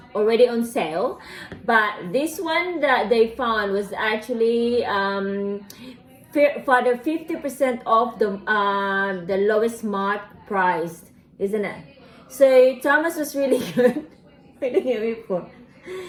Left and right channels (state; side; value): identical; both; correlation 1.00